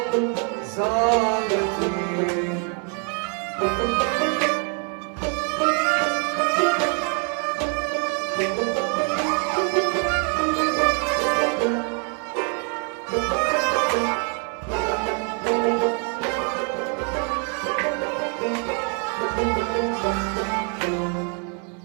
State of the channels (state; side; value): quieter; left; 39.2 dB